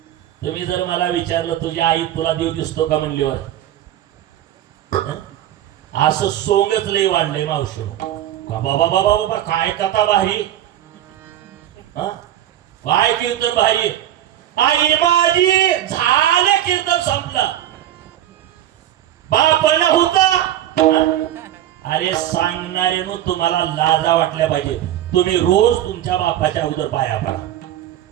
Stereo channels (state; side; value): quieter; left; 12.3 dB